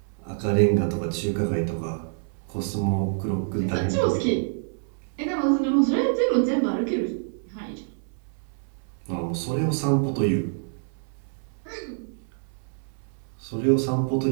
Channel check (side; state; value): left; silent; 61 dB below the other